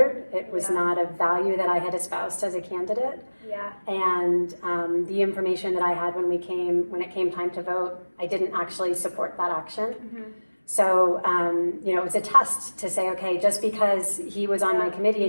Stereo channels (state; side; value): inverted; both; correlation -1.00